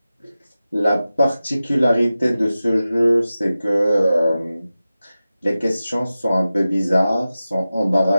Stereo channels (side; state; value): both; inverted; correlation -0.95